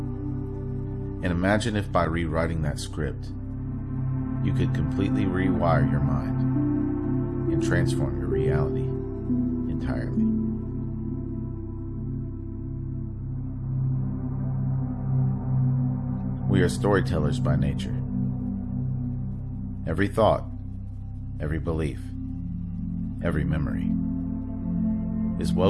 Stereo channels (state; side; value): identical; both; correlation 1.00